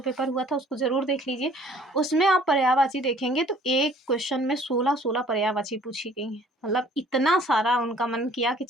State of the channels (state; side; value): normal; both; correlation 0.55